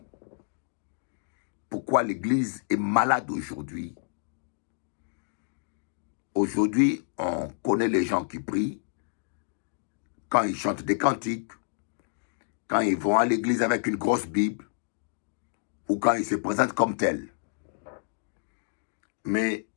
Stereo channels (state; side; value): silent; right; digital silence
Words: Pourquoi l'Église est malade aujourd'hui? Aujourd'hui, on connaît les gens qui prient, quand ils chantent des cantiques, quand ils vont à l'église avec une grosse Bible, ou quand ils se présentent comme tels. Mais